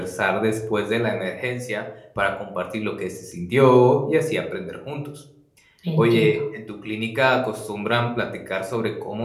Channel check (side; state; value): both; identical; correlation 1.00